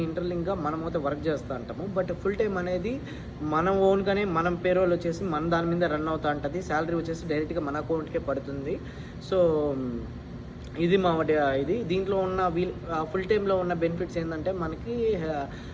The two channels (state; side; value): identical; both; correlation 1.00